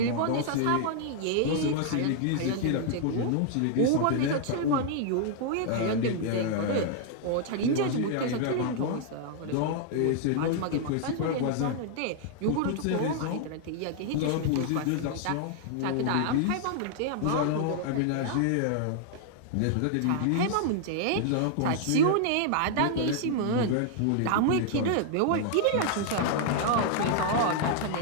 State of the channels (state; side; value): different; both; correlation 0.00